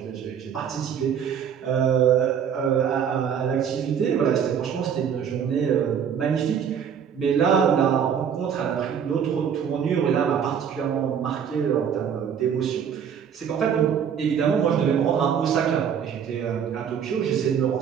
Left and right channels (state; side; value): quieter; left; 7.9 dB